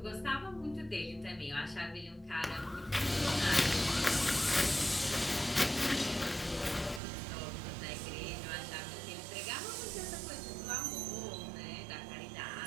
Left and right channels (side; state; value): left; drops out; at 7.0 s